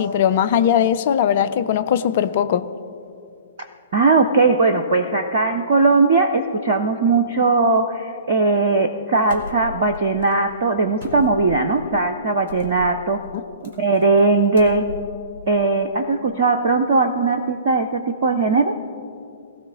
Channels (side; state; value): both; inverted; correlation -0.45